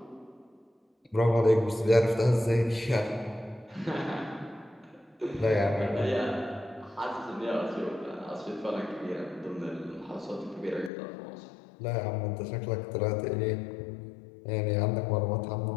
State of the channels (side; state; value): right; drops out; at 10.9 s